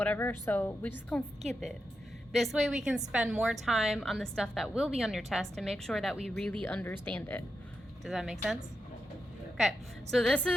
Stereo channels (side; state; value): both; normal; correlation 0.87